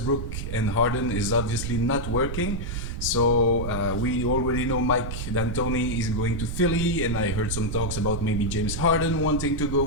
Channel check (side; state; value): right; noise; rumble, 4 dB below the sound